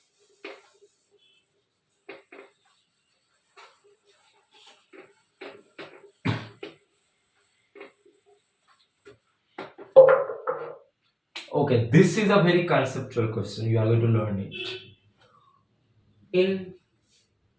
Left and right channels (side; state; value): both; identical; correlation 1.00